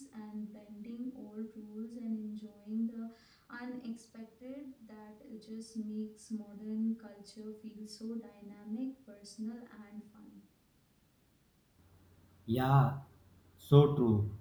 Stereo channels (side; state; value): both; identical; correlation 1.00